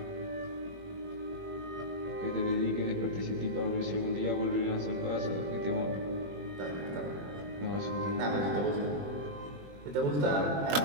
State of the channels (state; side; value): late; left; 21 ms